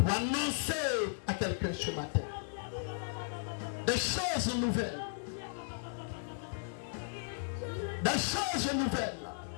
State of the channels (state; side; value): silent; right; digital silence